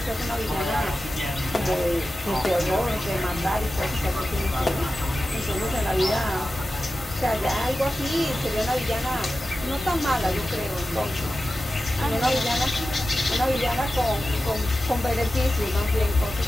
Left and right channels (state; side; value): normal; both; correlation 0.93